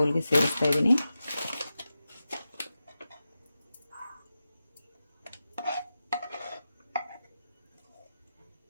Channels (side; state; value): both; inverted; correlation -0.92